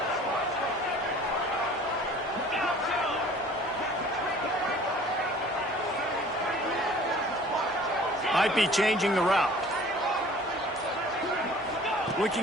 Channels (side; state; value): both; normal; correlation 0.49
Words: Might be changing the route.